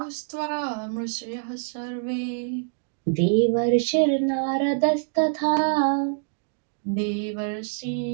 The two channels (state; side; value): silent; left; digital silence